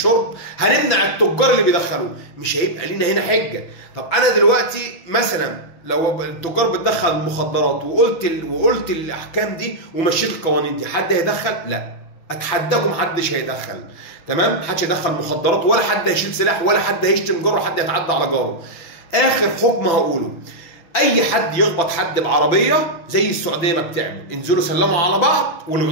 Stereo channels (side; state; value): right; late; 6.0 ms